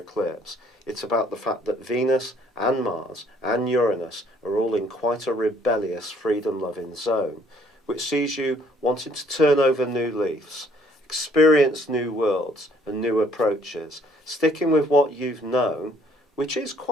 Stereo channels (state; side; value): normal; both; correlation 0.62